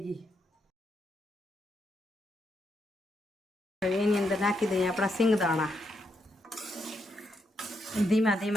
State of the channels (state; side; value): normal; both; correlation 0.80